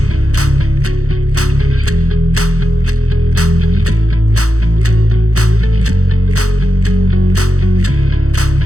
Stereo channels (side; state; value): left; late; 0.65 ms